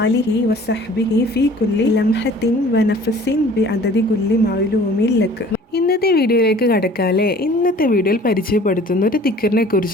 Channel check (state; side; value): normal; both; correlation 0.49